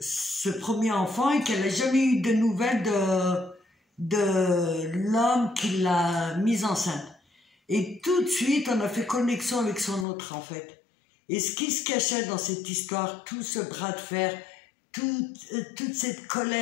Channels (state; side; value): drops out; right; at 10.1 s